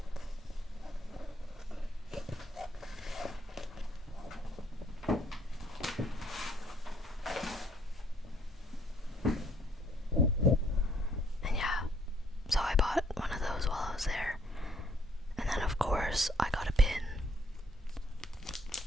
And yeah, so I bought one of those while I was there. And then of course I got a pin.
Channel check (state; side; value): normal; both; correlation 0.66